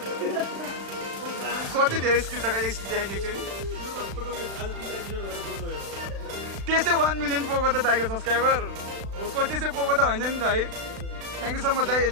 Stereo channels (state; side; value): late; left; 36 ms